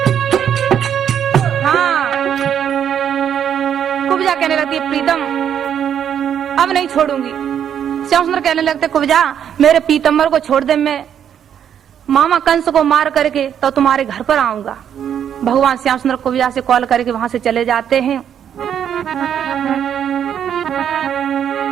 हाँ, कुब्जा कहने लगती है प्रीतम अब नहीं छोड़ूंगी। श्याम सुंदर कहने लगते कुब्जा मेरे पीतम्बर को छोड़ दे, मैं मामा कंस को मार करके तो तुम्हारे घर पर आऊंगा। भगवान श्याम सुंदर कुब्जा से कॉल करके वहां से चले जाते हैं।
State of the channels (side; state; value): left; quieter; 9.1 dB